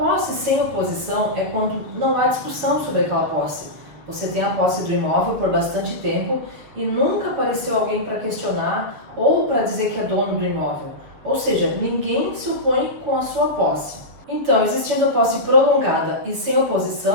sem oposição é quando não há discussão sobre aquela posse. Você tem a posse do imóvel por bastante tempo e nunca apareceu alguém para questionar ou para dizer que é dono do imóvel. Ou seja, ninguém se opõe com a sua posse. Então, existindo a posse prolongada e sem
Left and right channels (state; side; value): late; left; 7.3 ms